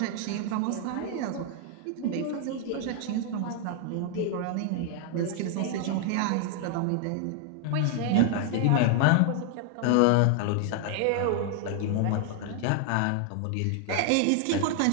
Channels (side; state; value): both; different; correlation 0.00